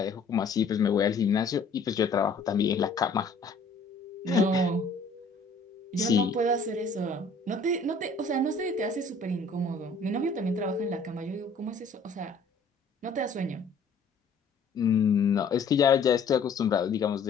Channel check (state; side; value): quieter; right; 4.0 dB